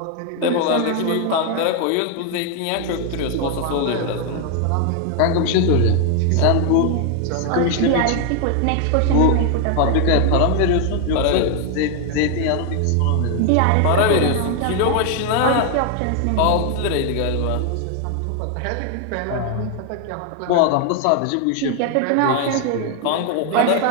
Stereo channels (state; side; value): different; both; correlation 0.00